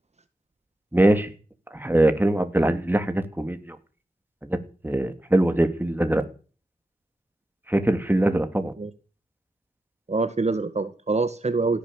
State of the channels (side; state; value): both; normal; correlation 0.89